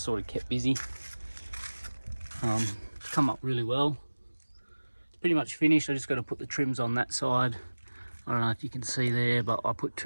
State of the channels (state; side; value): inverted; both; correlation -1.00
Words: sort of kept busy. Come up really well. It's pretty much finished. I just got to put the trims on that side. I don't know if you can see there, but I put